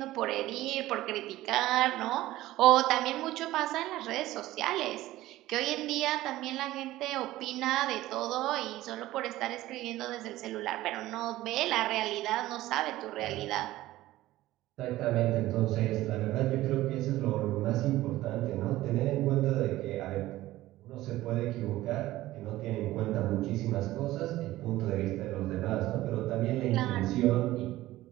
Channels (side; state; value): left; quieter; 16.2 dB